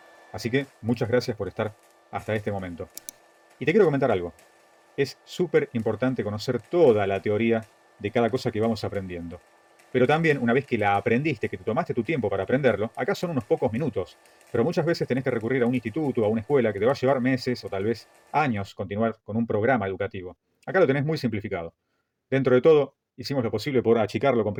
Así que muchas gracias por estar hasta este momento. Y te quiero comentar algo. Es súper importante conocer toda la teoría de cada cosa que vamos aprendiendo. Pero también, una vez que la aprendiste, que te tomaste tu tiempo para aprenderlo, acá son unos pocos minutos. Pero muchas veces tenés que recurrir a un instituto, a una escuela, que te va a llevar meses o tal vez años continuar con un programa educativo. Acá lo tenés muy simplificado. Dentro de todo, hicimos lo posible por achicarlo,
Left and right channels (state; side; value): identical; both; correlation 1.00